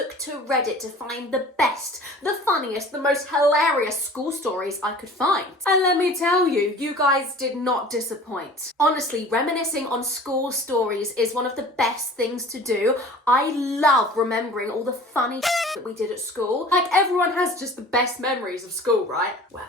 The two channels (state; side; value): normal; both; correlation 0.44